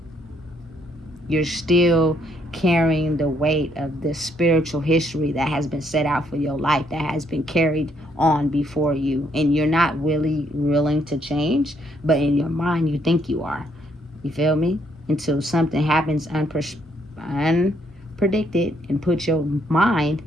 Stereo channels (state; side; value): normal; both; correlation 0.71